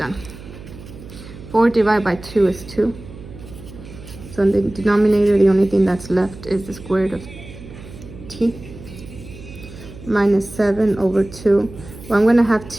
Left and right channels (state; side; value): noise; right; hum, 16 dB below the sound